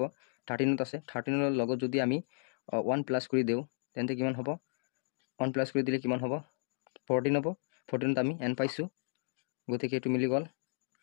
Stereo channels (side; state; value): right; silent; digital silence